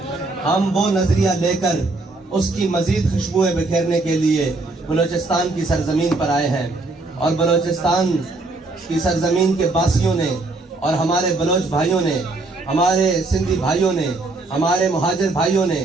ہم وہ نظریہ لے کر اس کی مزید خوشبوئیں بکھیرنے کے لیے بلوچستان کی سرزمین پر آئے ہیں. اور بلوچستان کی سرزمین کے باسیوں نے اور ہمارے بلوچ بھائیوں نے، ہمارے سندھی بھائیوں نے، ہمارے مہاجر بھائیوں نے،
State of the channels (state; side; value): quieter; left; 3.2 dB